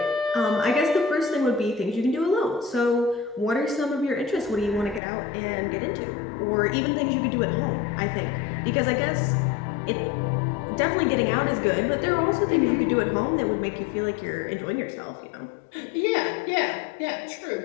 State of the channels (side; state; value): right; drops out; at 5.0 s